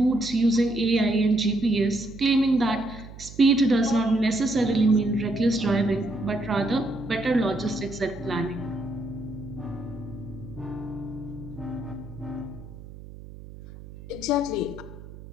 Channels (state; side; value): noise; right; hum, 16 dB below the sound